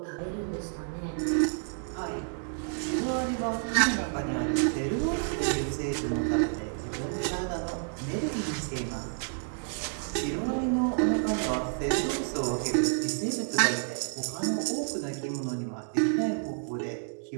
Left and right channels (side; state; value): left; silent; digital silence